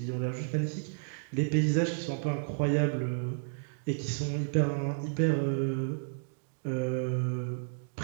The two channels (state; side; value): silent; left; digital silence